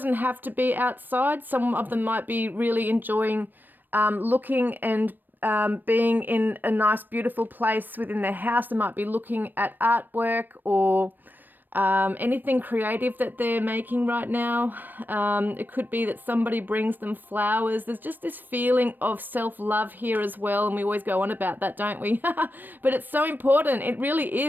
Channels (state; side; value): late; left; 0.091 ms